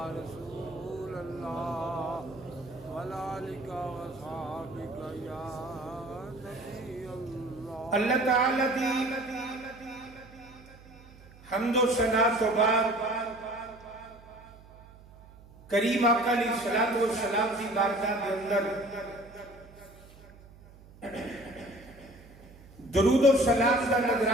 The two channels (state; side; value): noise; right; hum, 22 dB below the sound